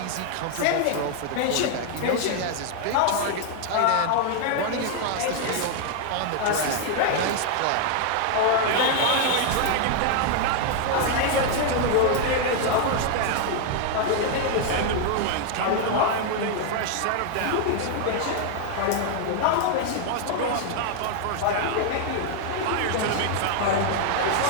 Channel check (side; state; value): both; different; correlation 0.00